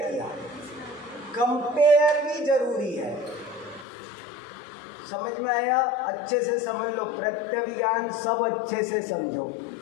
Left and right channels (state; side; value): drops out; right; at 3.9 s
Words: किया। कंपेयर भी जरूरी है, समझ में आया? अच्छे से समझ लो, प्रत्यभिज्ञान सब अच्छे से समझो।